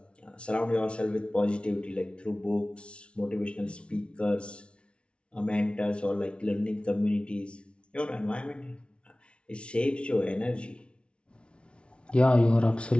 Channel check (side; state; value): right; late; 0.059 ms